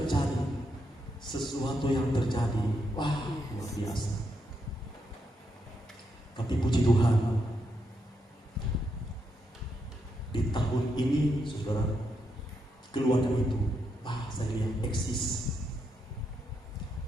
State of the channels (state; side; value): normal; both; correlation 0.81